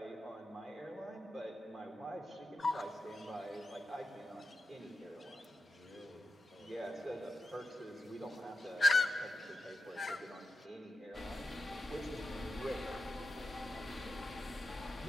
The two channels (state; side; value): normal; both; correlation 0.91